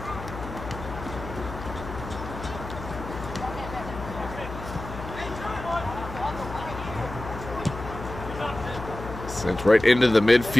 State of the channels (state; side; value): noise; left; hum, 10 dB below the sound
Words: Sent right into the